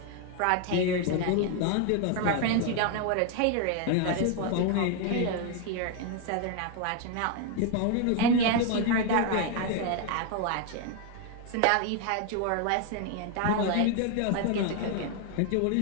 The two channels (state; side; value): different; both; correlation 0.01